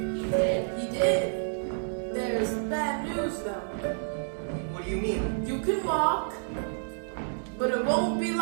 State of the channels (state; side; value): silent; left; digital silence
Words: He did. There's bad news though. What do you mean? You can walk, but it won't be